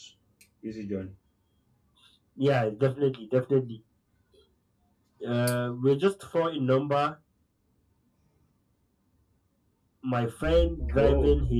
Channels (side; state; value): both; identical; correlation 1.00